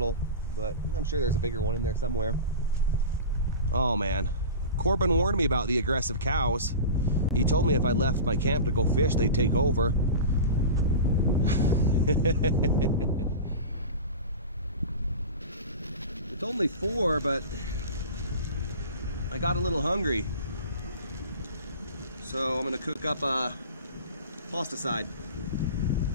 but I'm sure there's a bigger one in there somewhere. Oh man, Korbin warned me about the aggressive cows. He told me if I left my camp to go fish, they'd take over. It's only 4, but I got a little hungry. So I'm gonna cook up a pasta side.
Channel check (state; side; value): inverted; both; correlation -0.31